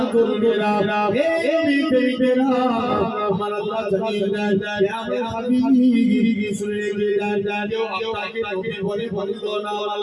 করবেরা হে বিবেকেরা আমার আল্লাহ জানিয়ে দেয় আমার হাবিব শুনে কেউ আপনাকে নবী বলে বললো না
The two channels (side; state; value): both; identical; correlation 1.00